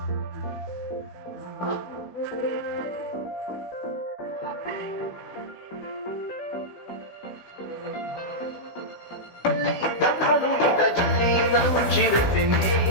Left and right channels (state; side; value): late; right; 16 ms